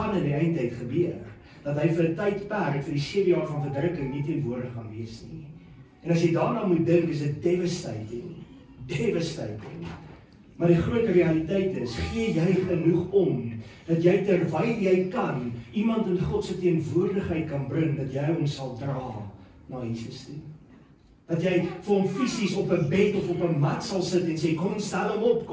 in die eindtyd gebeur. Dat hy vir 'n tydperk, vir die 7 jaar van verdrukking nie teenwoordig gaan wees nie. En as jy daarna moet dink, is dit devastating. Maar die groot realiteit is, gee jy genoeg om, dat jy terwyl jy kan, iemand in God se teenwoordigheid kan bring, dat jy hom sal dra na Jesus toe. Dat jy vir hom fisies op 'n bed of op 'n mat sal sit en sê, kom ons stel hom op,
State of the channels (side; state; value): both; identical; correlation 1.00